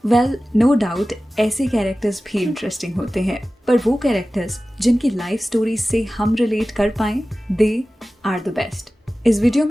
Well, no doubt ऐसे कैरेक्टर्स भी इंटरेस्टिंग होते हैं, पर वो कैरेक्टर्स जिनकी लाइफ स्टोरी से हम रिलेट कर पाएं, दे आर द बेस्ट। इस वीडियो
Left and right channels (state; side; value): normal; both; correlation 0.96